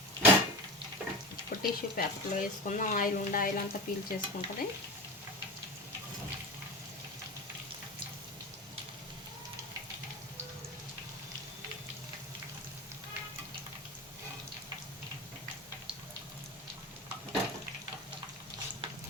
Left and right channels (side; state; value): both; normal; correlation 0.27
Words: టిష్యూ పేపర్లో వేసుకుందాం. ఆయిల్ ఉండే ఆయిల్ అంతా పీల్ చేసుకుంటుంది.